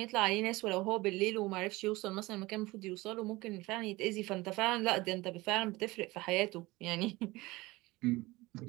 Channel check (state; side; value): quieter; left; 21.0 dB